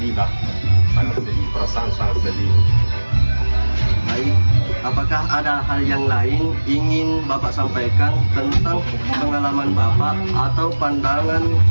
lah, perasaan sangat sedih. Baik, apakah ada hal yang lain ingin Bapak sampaikan tentang pengalaman Bapak atau pandangan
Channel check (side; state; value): both; inverted; correlation -1.00